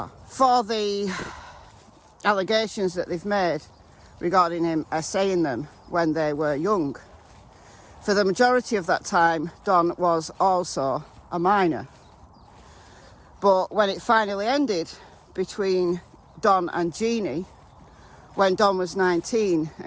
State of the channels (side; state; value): both; identical; correlation 1.00